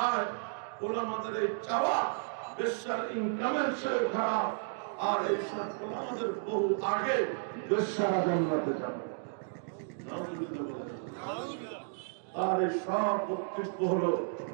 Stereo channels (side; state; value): left; silent; digital silence